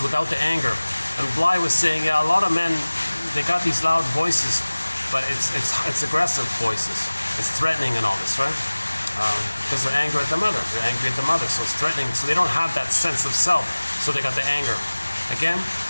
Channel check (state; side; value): inverted; both; correlation -1.00